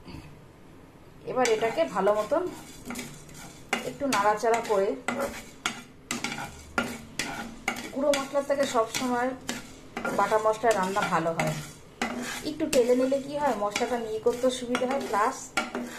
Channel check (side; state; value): both; identical; correlation 1.00